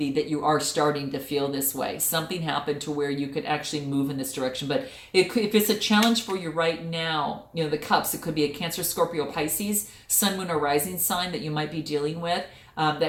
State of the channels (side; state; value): both; identical; correlation 1.00